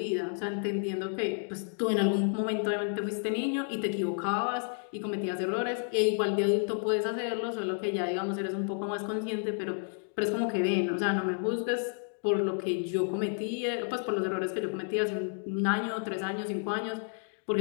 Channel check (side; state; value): right; silent; 57 dB below the other